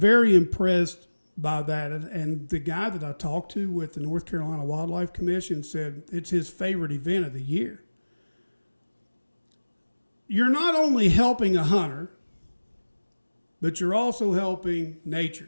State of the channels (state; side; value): inverted; both; correlation -1.00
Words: impressed by that. And the guy that I talked to with the North Carolina Wildlife Commission said it's his favorite event of the year. You're not only helping a hunter, but you're also helping